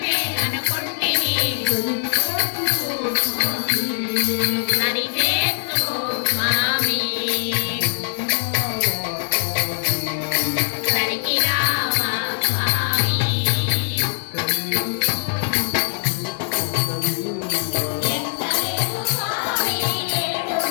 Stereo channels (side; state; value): right; silent; 65 dB below the other